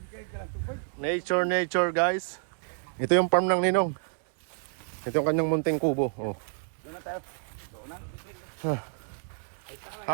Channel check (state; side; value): silent; left; 58 dB below the other